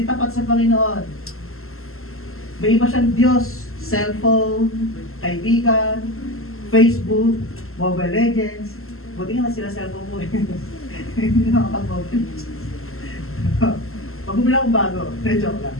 tapat sa Panginoon. May iba siyang Diyos, cellphone, kaibigan, Facebook, Mobile Legends. Buti nga na sila cellphone mo eh. Hindi nakapag-mobile. Pag bumili akong bago, joke lang.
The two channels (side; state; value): right; late; 0.62 ms